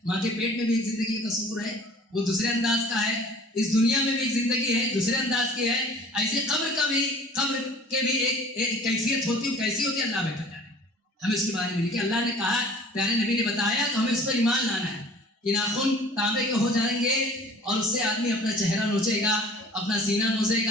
ماں کے پیٹ میں بھی ایک زندگی کا تصور ہے، وہ دوسرے انداز کا ہے۔ اس دنیا میں بھی ایک زندگی ہے، دوسرے انداز کی ہے۔ ایسے قبر کے بھی ایک کیفیت ہوتی ہے، کیسی ہوتی ہے اللہ بہتر جانے۔ ہمیں اس کے بارے میں لکھے، اللہ نے کہا، پیارے نبی نے بتایا، تو ہمیں اس پر ایمان لانا ہے کہ ناخن تانبے کے ہو جائیں گے اور اس سے آدمی اپنا چہرہ نوچے گا، اپنا سینہ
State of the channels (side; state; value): both; normal; correlation 0.47